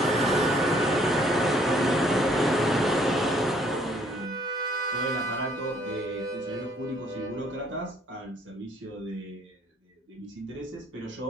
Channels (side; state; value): both; normal; correlation 0.63